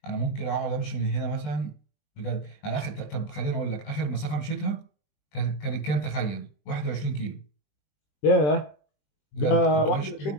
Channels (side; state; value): right; late; 20 ms